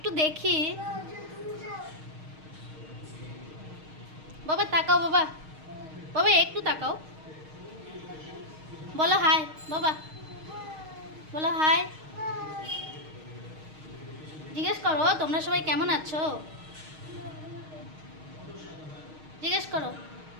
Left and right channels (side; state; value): left; late; 6.4 ms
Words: দেখি বাবা, তাকাও বাবা, বাবা একটু তাকাও, বলো হাই বাবা, বলো হাই। জিজ্ঞেস করো তোমরা সবাই কেমন আছো, জিজ্ঞেস করো।